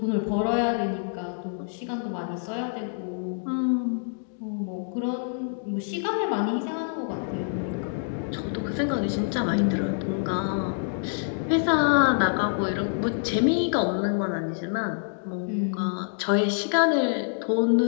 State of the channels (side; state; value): right; silent; digital silence